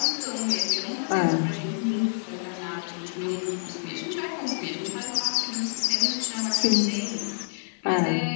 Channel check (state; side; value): silent; right; 60 dB below the other